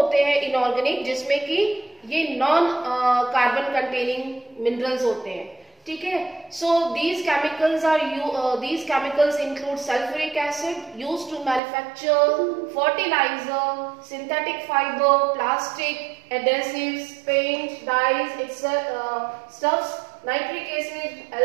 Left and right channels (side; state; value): left; drops out; at 11.6 s